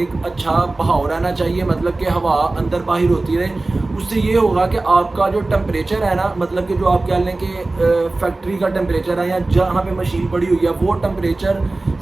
اچھا بہاؤ رہنا چاہیے، مطلب کہ ہوا اندر باہر ہوتی رہے. اس سے یہ ہوگا کہ آپ کا جو ٹمپریچر ہے نا، مطلب کہ جو آپ کہہ لیں کہ فیکٹری کا ٹمپریچر ہے یا جہاں پہ مشین پڑی ہوئی ہے، وہ ٹمپریچر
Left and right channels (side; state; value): left; quieter; 3.1 dB